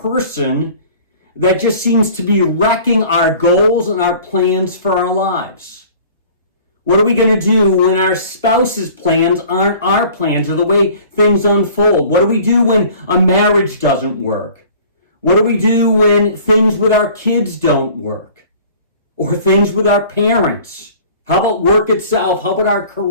that just seems to be wrecking our goals and our plans for our lives. What are we going to do when our spouse's plans aren't our plans or the way things unfold? What do we do when a marriage doesn't work? What do we do when things with our kids don't work? Or things with our parents? How about work itself? How about our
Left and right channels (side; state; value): both; inverted; correlation -0.48